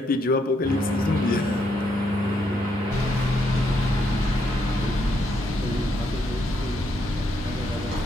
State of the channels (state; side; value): normal; both; correlation 0.76